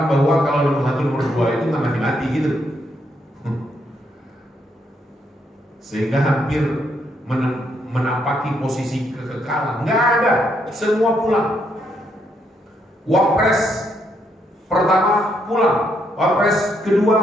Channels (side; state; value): both; normal; correlation 0.75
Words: bahwa kalau nomor 1 nomor 2 itu nggak mati-mati gitu. Sehingga hampir menapaki posisi kekekalan. Nggak ada, semua pulang. Wapres pertama pulang, wapres